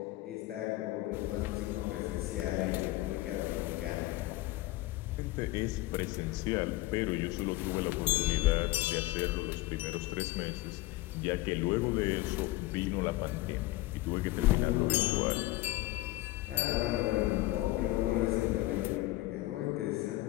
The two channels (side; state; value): right; quieter; 18.4 dB